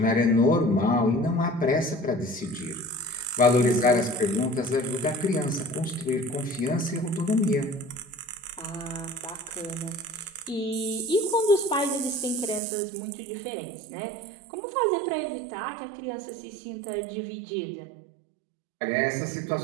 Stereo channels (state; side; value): drops out; left; at 12.6 s